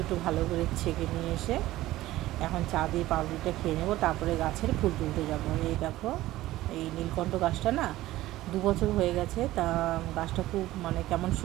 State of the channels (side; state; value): left; quieter; 16.1 dB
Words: ভালো করে ছেঁকে নিয়ে এসে এখন চা দিয়ে পাউরুটিটা খেয়ে নেবো, তারপরে গাছের ফুল তুলতে যাবো। এই দেখো, এই নীলকণ্ঠ গাছটা না 2 বছর হয়ে গেছে, তা গাছটা খুব কেমন